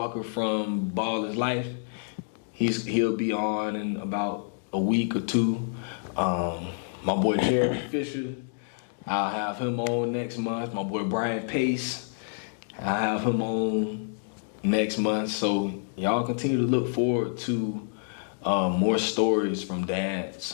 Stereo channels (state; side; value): silent; right; digital silence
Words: from Ball is Life. He'll be on in about a week or two. My boy Jeremy Fisher, I'll have him on next month. My boy Brian Pace, I'll have him on next month. So y'all continue to look forward to more stories from